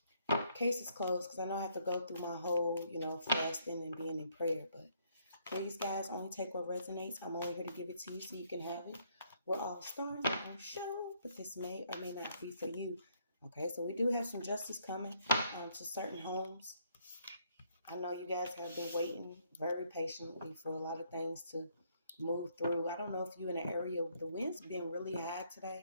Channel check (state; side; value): inverted; both; correlation -0.69